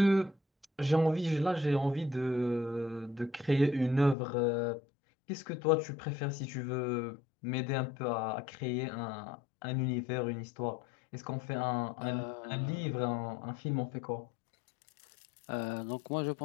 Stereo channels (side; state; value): right; drops out; at 4.2 s